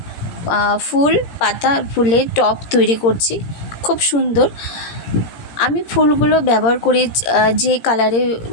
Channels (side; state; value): right; late; 17 ms